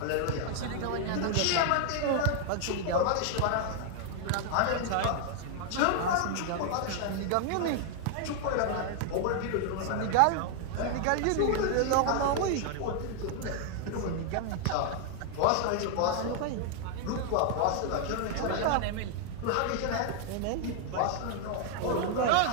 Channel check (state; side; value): different; both; correlation 0.00